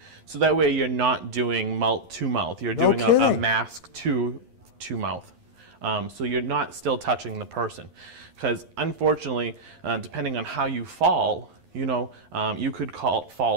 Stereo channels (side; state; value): left; late; 11 ms